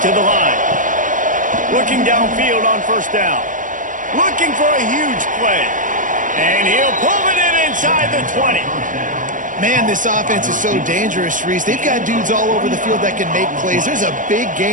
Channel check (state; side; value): late; left; 0.38 ms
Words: to the line. Looking downfield on first down. Looking for a huge play. And he'll pull it in inside the 20. Man, this offense is so dangerous, Reese. They've got dudes all over the field that can make plays. There's a big